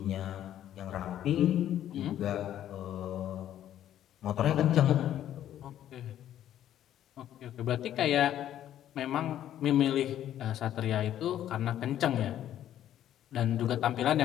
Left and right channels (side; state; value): right; quieter; 11.5 dB